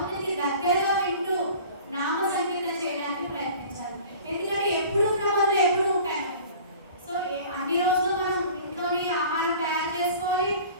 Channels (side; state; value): both; inverted; correlation -0.44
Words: దగ్గరగా వింటూ నామ సంకీర్తన చేయడానికి ప్రయత్నించాలి. ఎందుకంటే ఎప్పుడు ఉన్న పనులు ఎప్పుడు ఉంటాయి. సో అన్ని రోజులు మనం ఇంట్లోని ఆహారం తయారు చేసుకోవాలి,